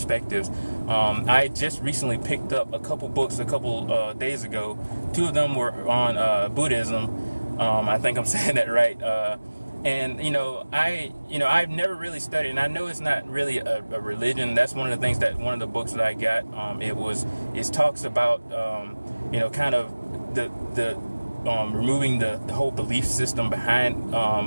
I just recently picked up a couple books a couple days ago. 2 of them were on Buddhism. I think I'm saying that right. And I've never really studied, and I know it's not really a religion. That's one of the things that one of the books that I got, it talks about kind of the removing the whole belief system behind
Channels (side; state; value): both; inverted; correlation -1.00